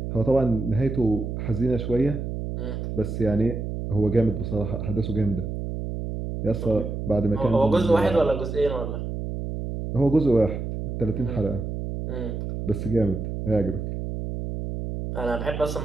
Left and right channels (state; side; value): noise; right; hum, 5 dB below the sound